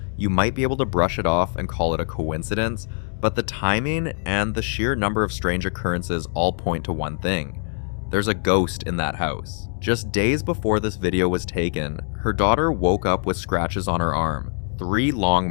you might be able to brush it off and call it a coincidence, but the timing and the sheer number of strange occurrences all point to one thing. There's a ghost in that house. Just days before this video was taken, her daughter woke up with scratches on her arm, 3 long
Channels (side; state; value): right; silent; 63 dB below the other